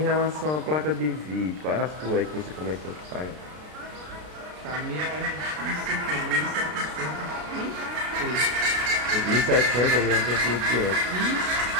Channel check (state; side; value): late; left; 33 ms